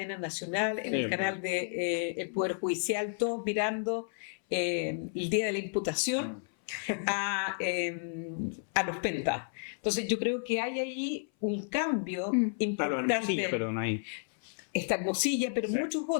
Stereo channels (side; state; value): right; silent; 57 dB below the other